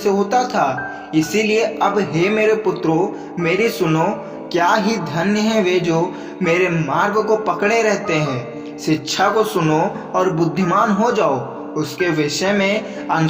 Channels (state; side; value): identical; both; correlation 1.00